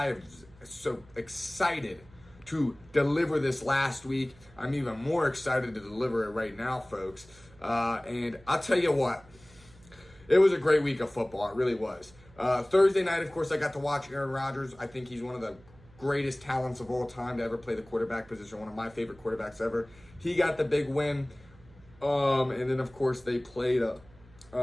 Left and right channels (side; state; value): right; noise; hum, 25 dB below the sound